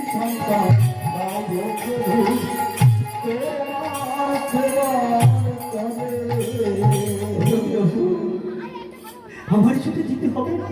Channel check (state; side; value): identical; both; correlation 1.00